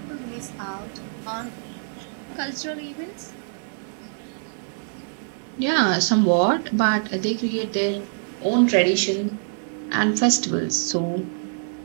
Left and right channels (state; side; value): silent; left; 62 dB below the other